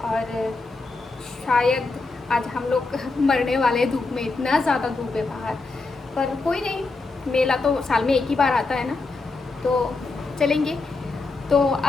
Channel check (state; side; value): quieter; right; 3.7 dB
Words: और शायद आज हम लोग मरने वाले हैं धूप में, इतना ज़्यादा धूप है बाहर। पर कोई नहीं, मेला तो साल में एक ही बार आता है ना, तो चलेंगे। तो